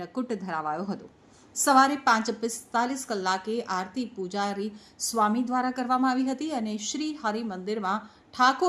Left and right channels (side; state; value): both; identical; correlation 1.00